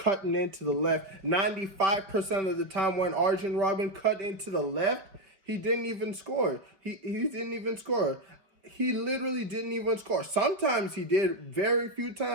into the left. 95% of the time when Arjen Robben cut into the left, he didn't even score. He didn't even score. he literally didn't even score. Sometimes he did, very few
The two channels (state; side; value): late; left; 4.9 ms